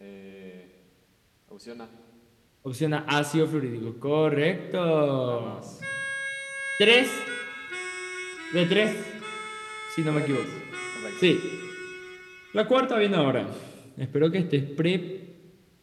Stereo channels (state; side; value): identical; both; correlation 1.00